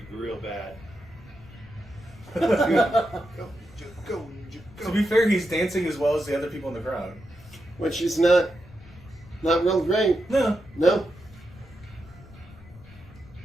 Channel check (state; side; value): noise; left; rumble, 21 dB below the sound